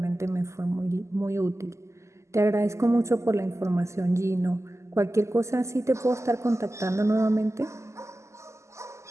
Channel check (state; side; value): late; left; 0.14 ms